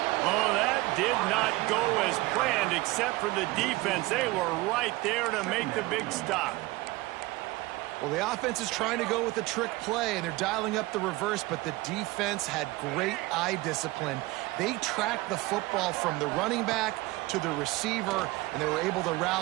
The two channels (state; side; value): quieter; left; 20.6 dB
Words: Oh, that did not go as planned, except for the defense. They were right there to make the big stop. Well, the offense is trying to go with a trick play, and they're dialing up the reverse, but the defense had great eye discipline. They tracked the football from the running back to the receiver, and they were able to